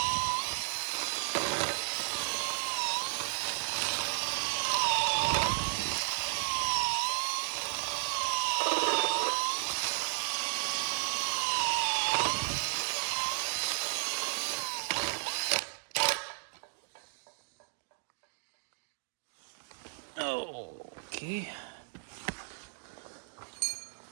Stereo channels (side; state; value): left; silent; digital silence